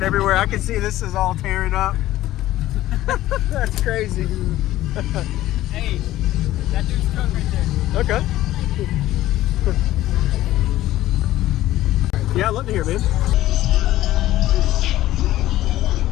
everywhere. I can see this is all tearing up. That's crazy. Hey, that dude's truck right there. Okay. Yeah, I'd love to hear, man.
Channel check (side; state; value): right; quieter; 14.9 dB